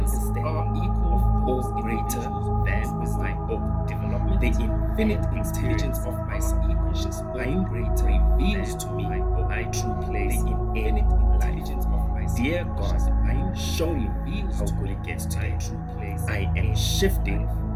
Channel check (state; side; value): identical; both; correlation 1.00